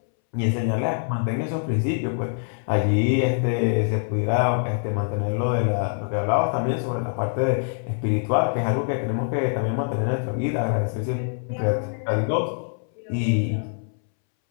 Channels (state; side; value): silent; right; 62 dB below the other